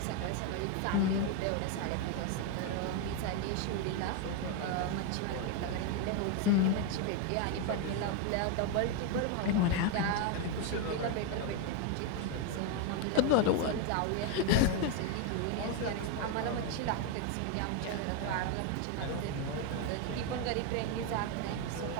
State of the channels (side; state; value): both; different; correlation 0.01